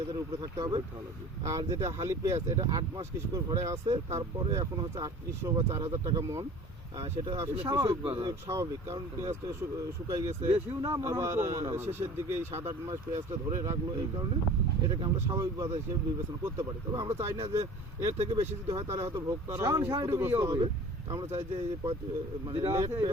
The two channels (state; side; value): normal; both; correlation 0.44